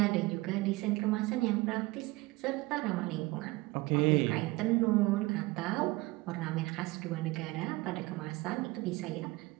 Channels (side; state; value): left; quieter; 21.8 dB